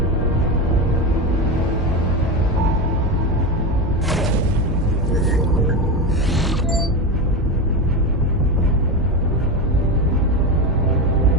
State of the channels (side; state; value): both; normal; correlation 0.18